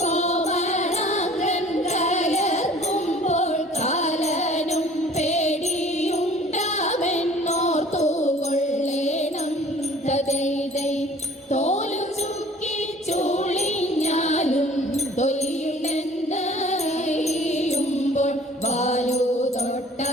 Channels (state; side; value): normal; both; correlation 0.50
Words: കോമളാംഗൻ കയർക്കുമ്പോൾ കാലനും പേടിയുണ്ടാമെന്നോർത്തുകൊള്ളേണം തദൈതൈ തോലു ചുക്കി ചുളിഞ്ഞാലും തൊലിയുണ്ടെന്നറിയുമ്പോൾ വാലു